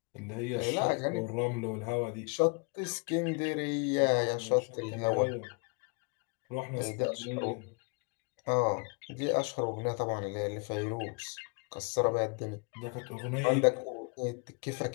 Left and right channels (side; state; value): right; quieter; 33.1 dB